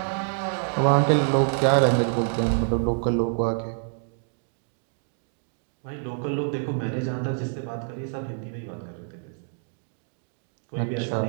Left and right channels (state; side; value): silent; left; 60 dB below the other